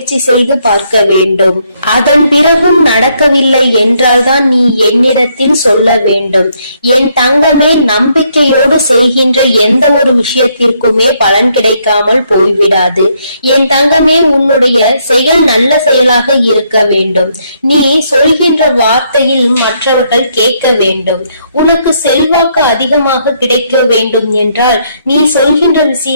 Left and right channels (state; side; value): inverted; both; correlation -0.73